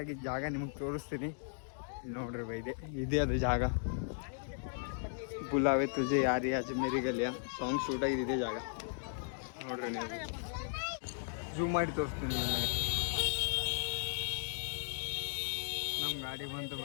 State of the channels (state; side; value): silent; right; digital silence